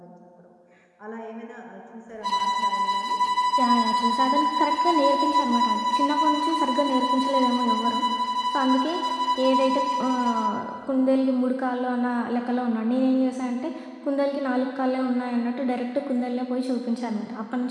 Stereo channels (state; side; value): identical; both; correlation 1.00